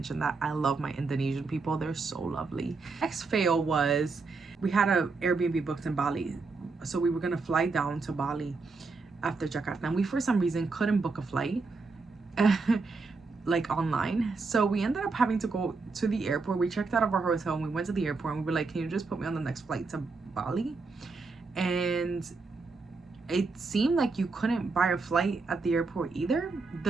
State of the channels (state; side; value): quieter; left; 4.1 dB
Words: that. I love my Indonesian people. They're so lovely. Next fail was we had a Airbnb booked in Bali. So we were gonna fly down to Bali after Jakarta, and we for some reason couldn't book a flight like online, so we ended up having to go to the airport. We checked out of our hotel and we went to the airport and we were like, can you just put me on the next flight to Bali? And it seemed like you couldn't buy a flight at the airport either.